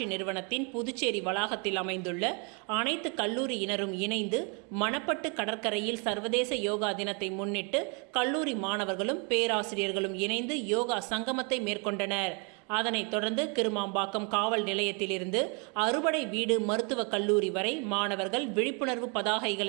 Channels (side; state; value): left; quieter; 34.6 dB